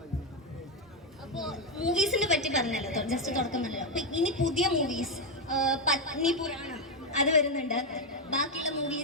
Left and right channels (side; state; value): both; normal; correlation 0.05